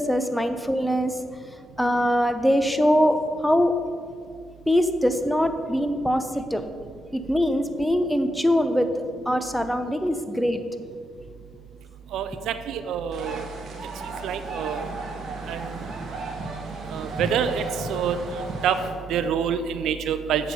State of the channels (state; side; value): normal; both; correlation 0.82